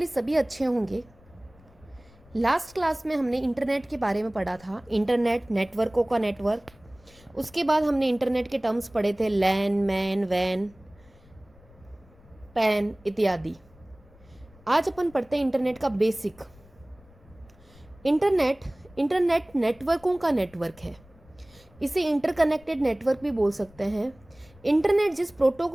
सभी अच्छे होंगे। लास्ट क्लास में हमने इंटरनेट के बारे में पढ़ा था, इंटरनेट, नेटवर्कों का नेटवर्क। उसके बाद हमने इंटरनेट के टर्म्स पढ़े थे, लैन, मैन, वैन, पैन इत्यादि। आज अपन पढ़ते हैं इंटरनेट का बेसिक। इंटरनेट नेटवर्कों का नेटवर्क है। इसे इंटरकनेक्टेड नेटवर्क भी बोल सकते हैं। इंटरनेट जिस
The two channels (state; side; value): noise; left; rumble, 26 dB below the sound